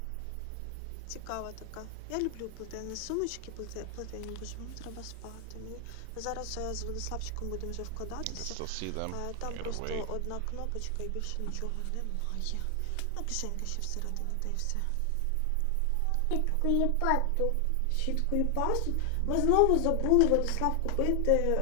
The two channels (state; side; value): different; both; correlation 0.00